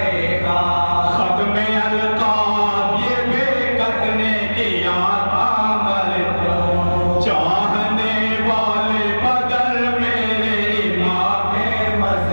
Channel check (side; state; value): both; inverted; correlation -1.00